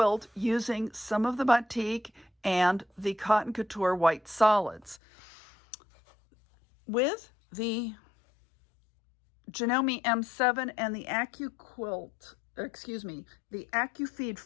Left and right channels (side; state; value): right; drops out; at 5.0 s